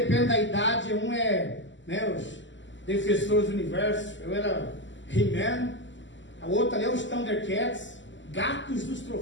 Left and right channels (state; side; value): late; right; 0.54 ms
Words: da idade, um é, né, os Defensores do Universo, eu era He-Man, o outro ali é os Thundercats, Gatos dos